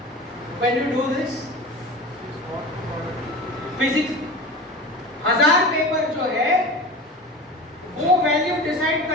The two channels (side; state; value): both; normal; correlation 0.32